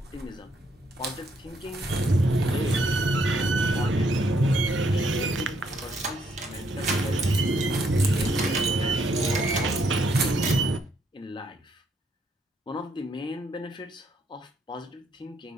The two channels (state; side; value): normal; both; correlation 0.72